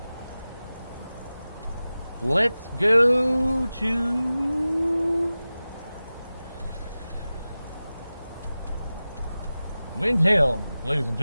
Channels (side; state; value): both; inverted; correlation -0.96